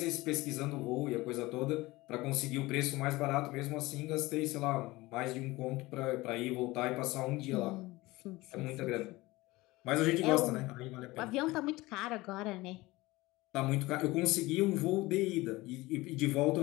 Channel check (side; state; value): right; quieter; 20.3 dB